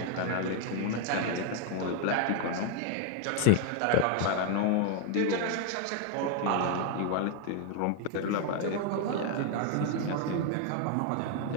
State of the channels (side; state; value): both; different; correlation 0.00